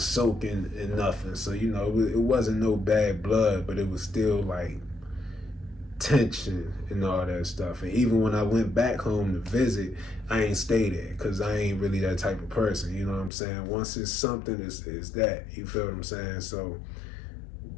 in nothing. So, you know, it wasn't no bad blood, but it was still like tension and all that stuff. And even when I went back home to visit, I ain't stay there because I ain't really that type of person, you know what I'm saying? Once it's something, it's that, you feel what I'm saying? So,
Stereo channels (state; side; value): drops out; right; at 13.3 s